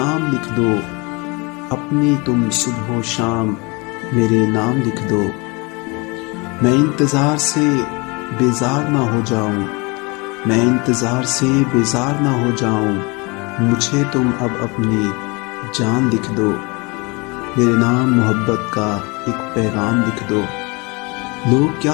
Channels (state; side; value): quieter; right; 28.2 dB